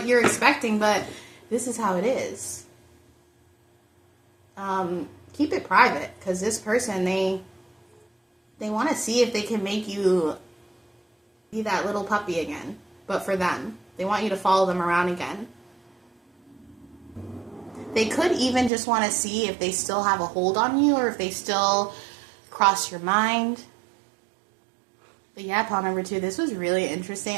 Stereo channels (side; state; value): left; drops out; at 18.7 s